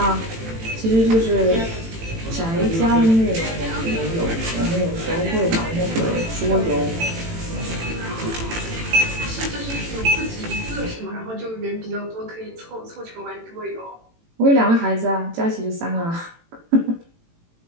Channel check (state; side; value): late; left; 18 ms